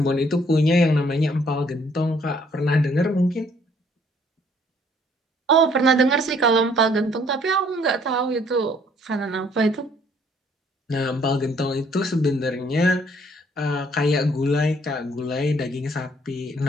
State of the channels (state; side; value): normal; both; correlation 0.63